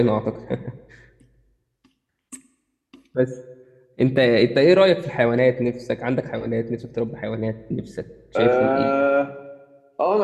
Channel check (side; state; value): both; identical; correlation 1.00